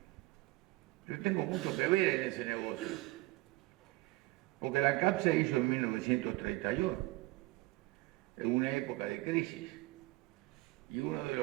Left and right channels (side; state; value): left; quieter; 21.0 dB